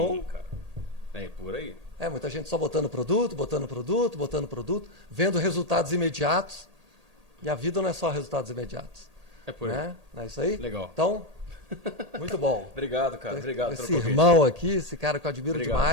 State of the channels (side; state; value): left; late; 1.8 ms